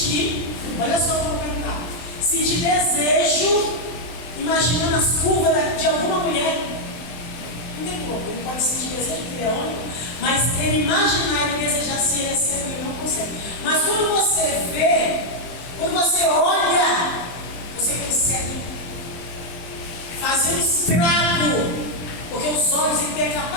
Olha só o que eu vou perguntar. Sentir desejo, imaginando as curvas de alguma mulher? Não tem como, ele pode sentir desejo porque ele é homem, mas ele imaginar e desejar se ele é cego, ele não consegue. Mas quando você vê, quando você olha, você consegue fazer um estrago. Porque os olhos têm a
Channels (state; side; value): late; right; 23 ms